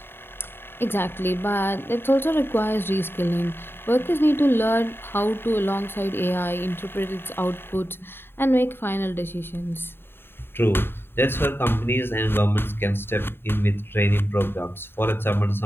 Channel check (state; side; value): late; right; 0.11 ms